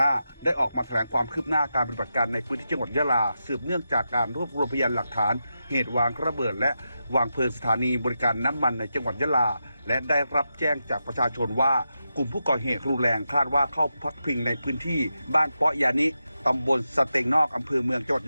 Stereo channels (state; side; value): inverted; both; correlation -0.88